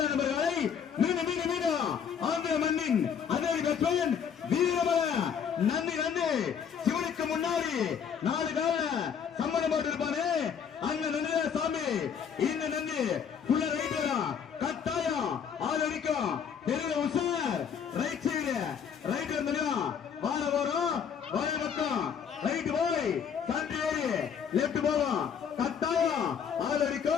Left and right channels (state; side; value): quieter; right; 7.5 dB